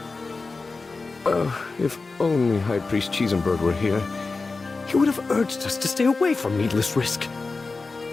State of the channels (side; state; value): right; quieter; 3.9 dB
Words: If only High Priest Cheesenberg were here, he would have urged us to stay away from needless risk.